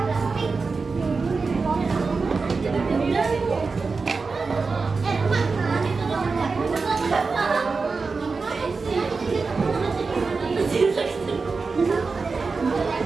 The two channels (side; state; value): left; quieter; 4.4 dB